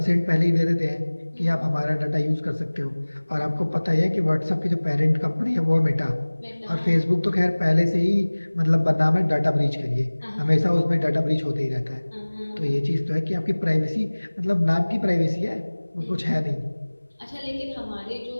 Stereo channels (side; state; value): both; inverted; correlation -1.00